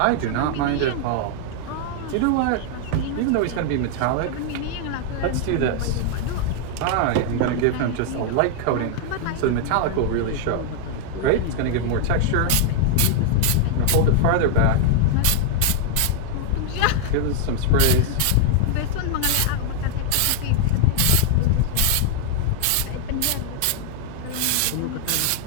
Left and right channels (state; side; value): different; both; correlation 0.00